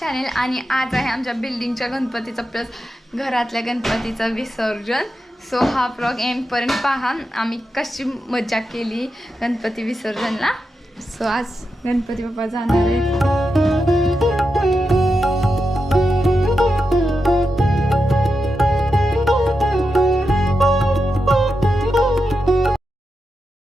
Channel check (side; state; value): both; normal; correlation 0.88